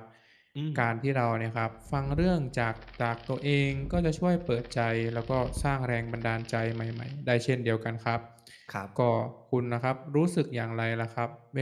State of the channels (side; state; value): both; identical; correlation 1.00